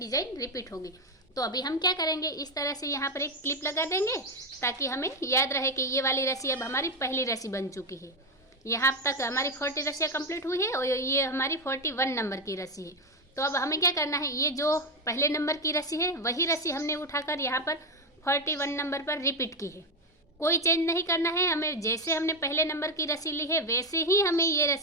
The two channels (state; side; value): normal; both; correlation 0.09